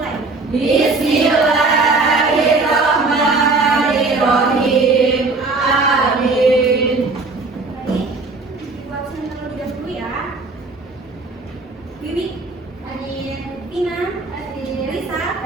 Bismillahirrahmanirrahim. Amin. Baik, buat saya terlebih dahulu ya. Bibi, Hadir, Tina, Hadir, Risa,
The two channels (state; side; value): quieter; left; 3.7 dB